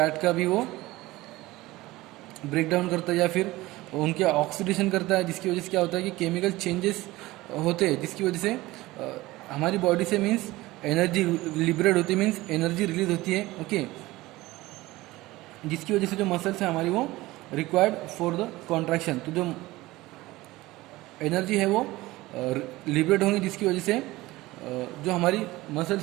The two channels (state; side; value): quieter; left; 18.9 dB